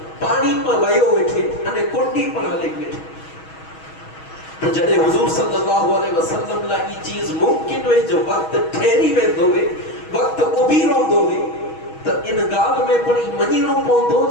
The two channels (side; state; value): right; late; 6.3 ms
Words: پانی پر ویو ویٹھے انہیں کنڈی پر ہلک ویٹھے. تو جڑے حضور صلی اللہ علیہ وسلم لا یہ چیز ممکن ہوئے جو وقت ٹھہری وے دوے وقت ابیروں دوے تو ان گال میں پڑی منیروں پوندو